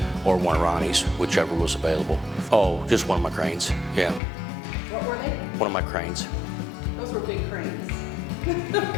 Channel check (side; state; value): right; drops out; at 4.2 s